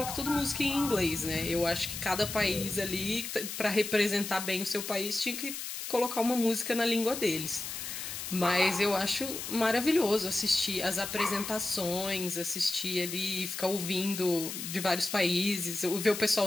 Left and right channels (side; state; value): left; noise; hiss, 6 dB below the sound